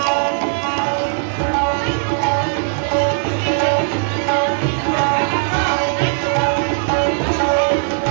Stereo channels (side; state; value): left; silent; 67 dB below the other